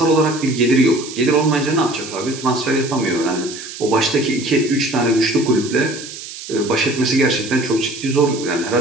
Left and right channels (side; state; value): right; noise; hiss, 12 dB below the sound